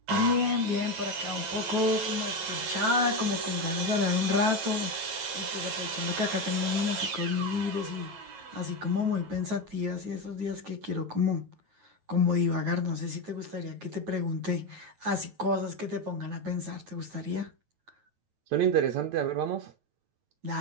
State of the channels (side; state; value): left; late; 9.1 ms